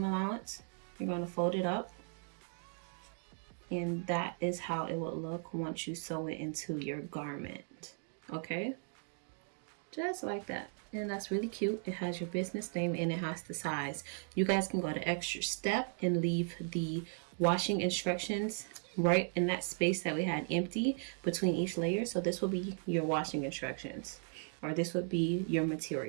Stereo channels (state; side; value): silent; left; 53 dB below the other